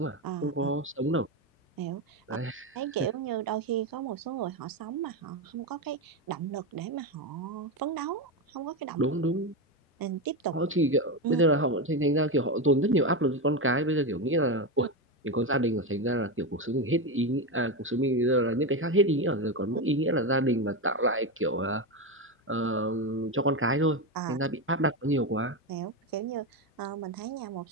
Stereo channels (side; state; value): both; normal; correlation 0.13